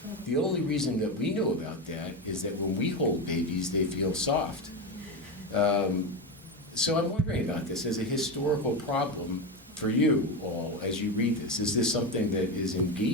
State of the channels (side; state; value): both; normal; correlation 0.16